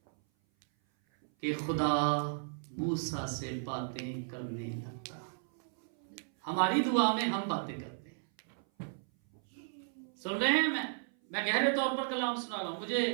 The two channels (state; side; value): silent; left; 55 dB below the other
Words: कि खुदा मूसा से बातें करने लगता। हमारी दुआ में हम बातें करते हैं। सुन रहे हैं? मैं गहरे तौर पर कलाम सुना रहा हूं।